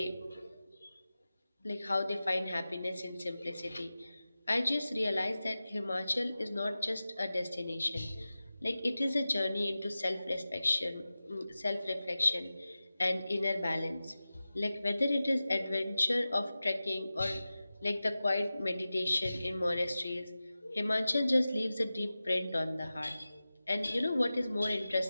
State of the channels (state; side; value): inverted; both; correlation -0.95